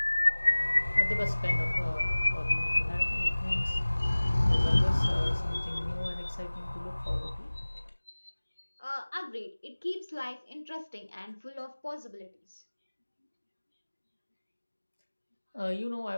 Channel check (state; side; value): inverted; both; correlation -1.00